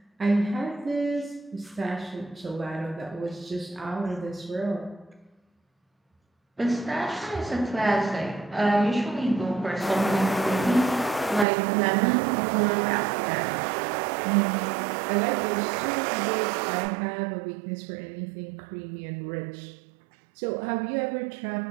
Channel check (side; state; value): left; drops out; at 11.5 s